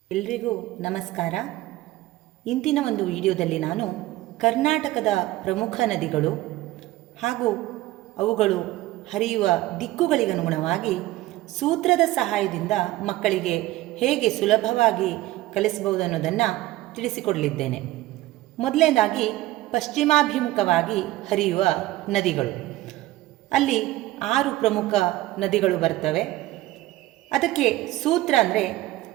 ಎಲ್ರಿಗೂ ನಮಸ್ಕಾರ. ಇಂದಿನ ಒಂದು ವಿಡಿಯೋದಲ್ಲಿ ನಾನು ಕರ್ನಾಟಕದ ಪ್ರಮುಖ ನದಿಗಳು ಹಾಗೂ ಅವುಗಳು ಹರಿಯುವ ದಿಕ್ಕುಗಳಿಗನುಗುಣವಾಗಿ ಸೂತ್ರದ ಸಹಾಯದಿಂದ ಮಕ್ಕಳಿಗೆ ಹೇಗೆ ಸುಲಭವಾಗಿ ಕಲಿಸಬಹುದು ಅನ್ನೋದನ್ನು ತಿಳಿಸಿಕೊಡಲಿದ್ದೇನೆ. ಮೊದಲನೇದಾಗಿ ಪಶ್ಚಿಮಾಭಿಮುಖವಾಗಿ ಹರಿಯುವ ನದಿಗಳು. ಅಲ್ಲಿ 6 ಪ್ರಮುಖ ನದಿಗಳು ಬರ್ತವೆ. ಅದಕ್ಕೆ ಸೂತ್ರ ಅಂದರೆ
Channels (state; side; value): quieter; left; 17.0 dB